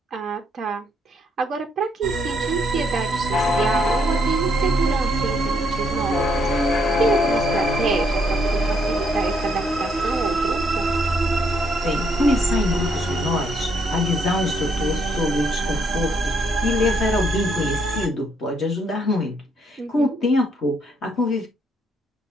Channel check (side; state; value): both; normal; correlation 0.72